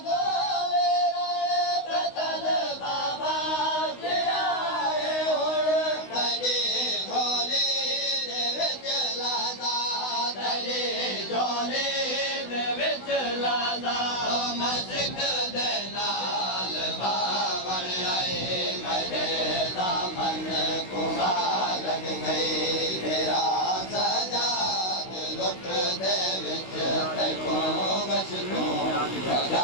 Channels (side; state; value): right; late; 16 ms